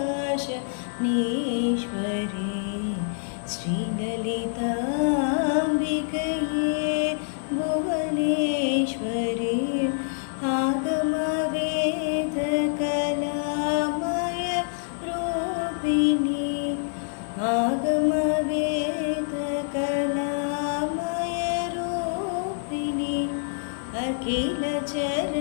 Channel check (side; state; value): right; silent; 61 dB below the other